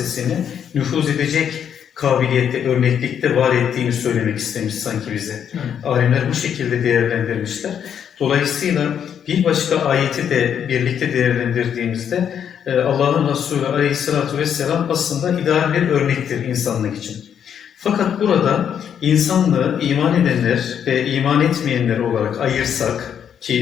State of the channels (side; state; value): right; quieter; 8.5 dB